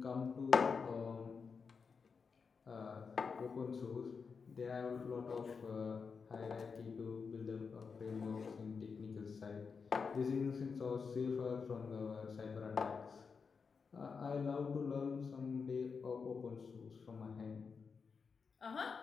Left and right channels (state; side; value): quieter; right; 5.4 dB